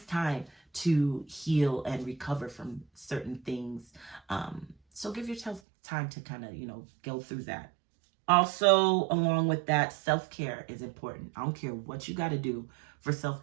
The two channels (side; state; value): left; drops out; at 5.6 s